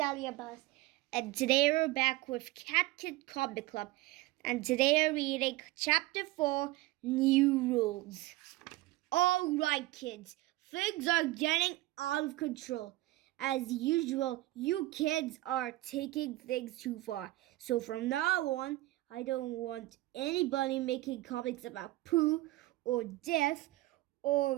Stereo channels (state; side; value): quieter; left; 18.2 dB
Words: Abbas, and today we're back with Cat Kid Comic Club, and today we're reading Chapter 4, New Rules. Alright kids, things are getting out of control. As usual, you kids are taking things too far. So from now on, I don't want anybody making comics about poo or death